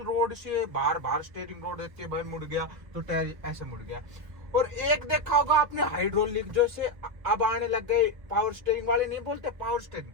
रोड से बाहर स्टीयरिंग रोड देते हैं भाई, मुड़ गया तो टायर ऐसे मुड़ गया। और एक देखा होगा आपने हाइड्रोलिक, जो से अब आने लग गए पावर स्टीयरिंग वाले, नहीं बोलते पावर स्टीयरिंग।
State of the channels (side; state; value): left; late; 1.4 ms